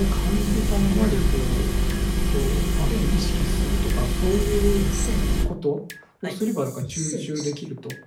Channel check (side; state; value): both; identical; correlation 1.00